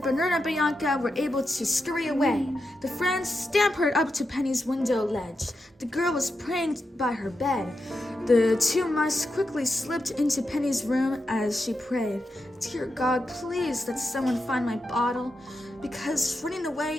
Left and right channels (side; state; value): both; normal; correlation 0.87